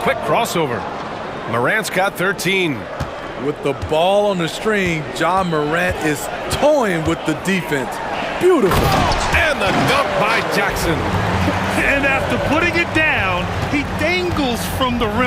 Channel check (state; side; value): identical; both; correlation 1.00